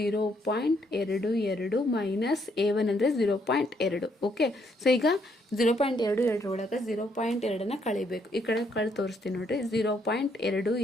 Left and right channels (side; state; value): both; normal; correlation 0.72